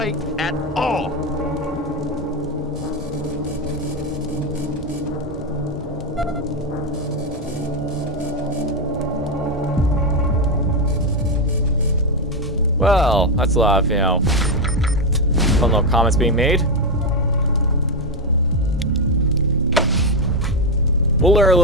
at all. Well, that's a lot of, fun little comments being made. We'll learn a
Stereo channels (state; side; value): normal; both; correlation 0.07